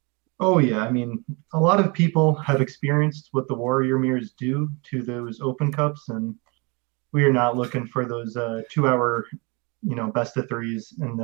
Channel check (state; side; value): quieter; left; 29.5 dB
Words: Oh yeah, I mean, a lot of people have experienced what the warrior mirrors do to those open cups, and we are not looking for those 2 hour, best of threes in